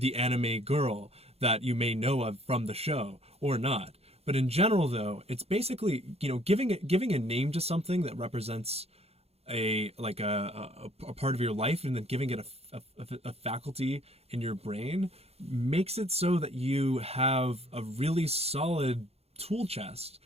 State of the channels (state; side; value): late; left; 0.30 ms